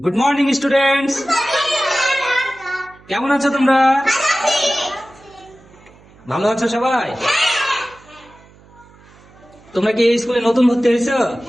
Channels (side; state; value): right; noise; hum, 26 dB below the sound